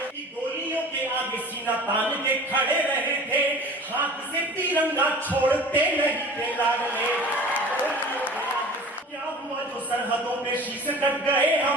गोलियों के आगे सीना तान के खड़े रहे थे, हाथ से तिरंगा छोड़ते नहीं थे लाडले। क्या हुआ जो सरहदों पे शीश कट गए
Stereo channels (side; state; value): both; normal; correlation 0.41